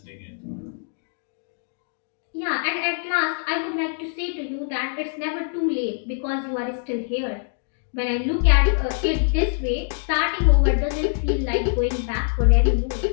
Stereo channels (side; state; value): right; silent; digital silence